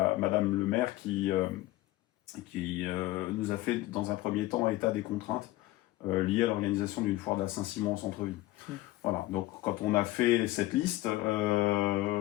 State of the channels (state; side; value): quieter; right; 17.5 dB